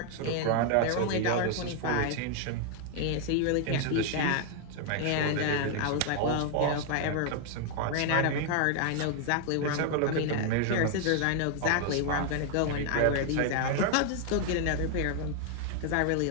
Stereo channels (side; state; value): both; different; correlation 0.00